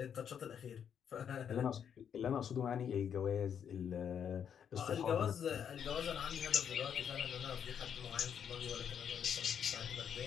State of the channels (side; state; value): right; quieter; 8.2 dB